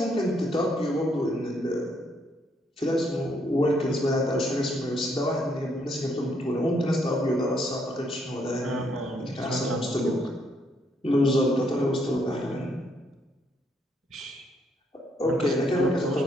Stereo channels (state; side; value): normal; both; correlation 0.72